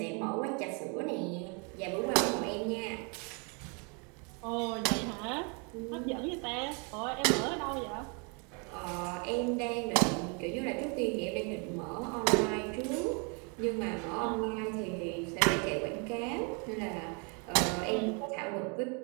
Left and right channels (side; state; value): left; quieter; 34.9 dB